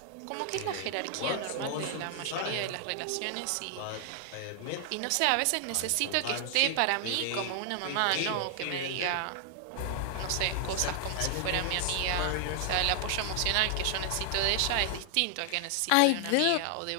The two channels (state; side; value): different; both; correlation 0.00